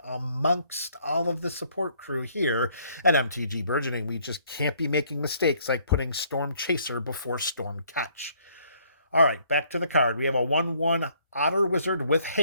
amongst all of the support crew here at MTG Burgeoning. We just can't be making mistakes like putting Storm Chaser before Storm Catch. All right, back to the card. We have a 1/1 Otter Wizard with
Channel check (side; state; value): both; inverted; correlation -0.64